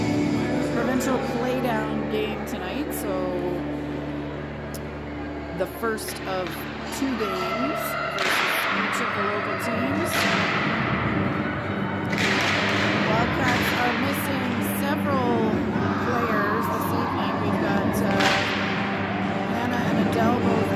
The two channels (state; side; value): identical; both; correlation 1.00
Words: provincial playdown game tonight, so the first of 2 games versus each of the local teams. Wildcats are missing several players this evening. We've got Anna and Adele both